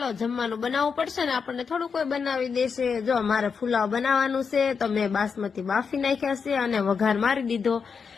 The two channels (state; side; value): quieter; right; 5.8 dB